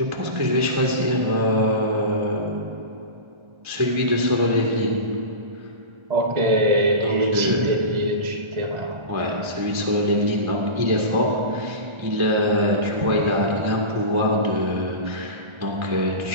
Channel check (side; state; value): left; late; 1.3 ms